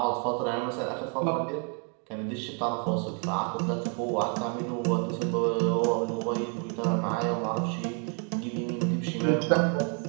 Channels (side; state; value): left; quieter; 38.9 dB